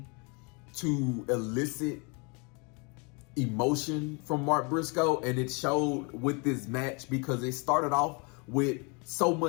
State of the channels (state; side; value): quieter; right; 32.3 dB